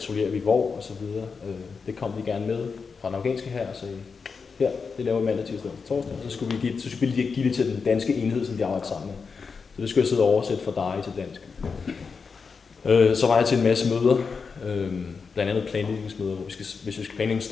vi hvor, og så videre. Det kom de gerne med fra den afghanske her og sagde, her, det laver vi mandag, tirsdag og torsdag, og så skulle vi give det til den danske enhed, som de arbejder sammen med. Så det skulle jeg sidde og oversætte fra dig til dansk. Så var jeg til en masse møder, blandt andet planlægningsmøder, hvor hvis vi skal planlægge en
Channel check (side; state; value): right; quieter; 5.2 dB